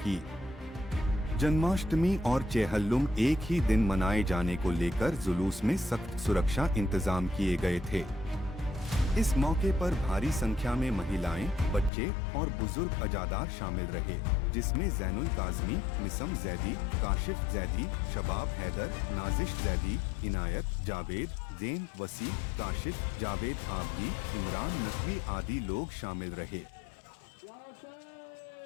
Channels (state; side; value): drops out; right; at 11.9 s